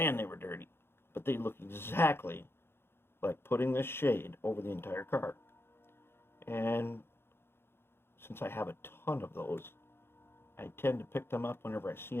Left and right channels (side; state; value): right; late; 0.11 ms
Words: they were dirty. But they look exactly like putting this shade over the entire car. And since I have a ton of those, I tend to pick them up whenever I see